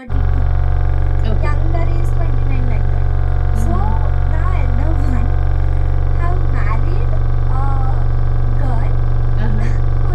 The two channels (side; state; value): both; identical; correlation 1.00